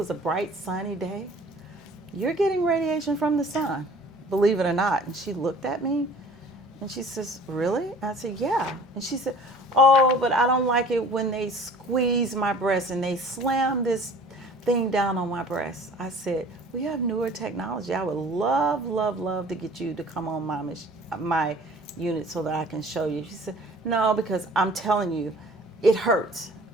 a bright, sunny day. You're getting radiation from the sun, believe it or not. And she looked at me, and she says, really? I said, yeah. And she said, oh, but I don't like it when they squeeze my breast and they slam this thing down on my breast. I said, we have newer technology. I would love to get you to come on my unit so that I can show you. She said, no, because I'm telling you, it hurts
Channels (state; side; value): normal; both; correlation 0.48